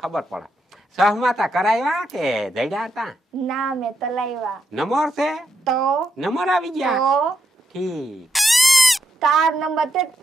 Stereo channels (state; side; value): normal; both; correlation 0.81